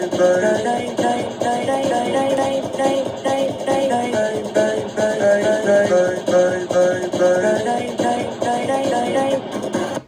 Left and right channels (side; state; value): both; identical; correlation 1.00